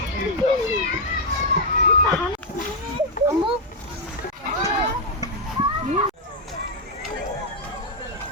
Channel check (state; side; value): normal; both; correlation 0.00